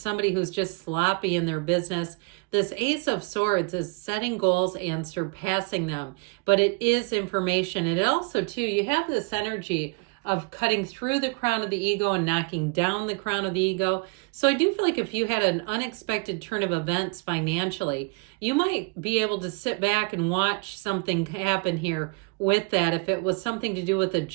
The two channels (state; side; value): quieter; left; 32.1 dB